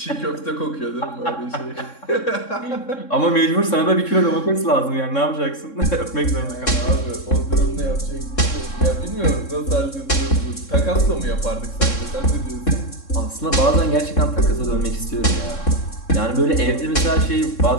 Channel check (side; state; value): right; late; 3.6 ms